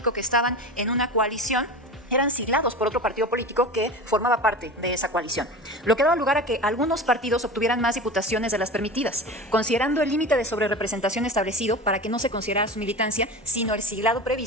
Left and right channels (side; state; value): both; normal; correlation 0.31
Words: que estaban en una coalición eran siglados por otro partido político que formaba parte de esa coalición, lo que daba lugar a que algunos partidos obtuvieran más diputaciones de las permitidas, considerando el límite de sobrerepresentación establecido para que no se considerara su militancia, sino el siglado